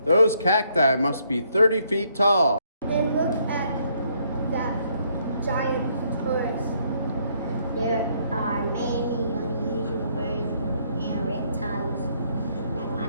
Those cacti must be 30 feet tall. And look at that giant torus. There are many unusual birds and reptiles like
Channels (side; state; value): both; inverted; correlation -0.70